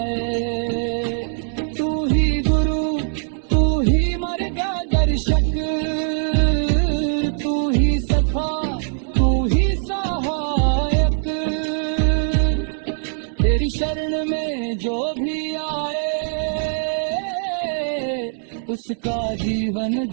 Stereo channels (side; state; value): left; silent; 64 dB below the other